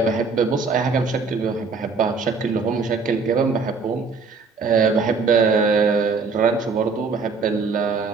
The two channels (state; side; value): quieter; left; 4.6 dB